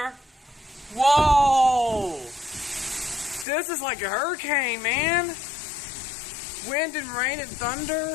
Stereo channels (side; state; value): right; drops out; at 3.5 s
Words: Whoa! This is like a hurricane, man. Wind and rain and